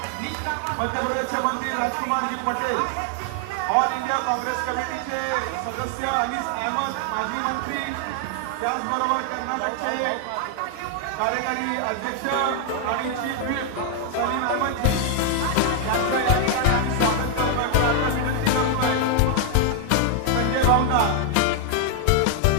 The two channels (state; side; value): different; both; correlation 0.00